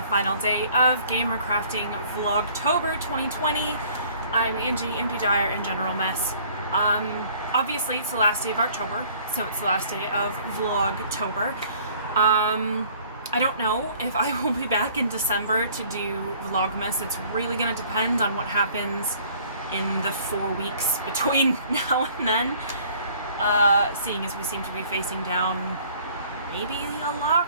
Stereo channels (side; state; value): both; inverted; correlation -0.55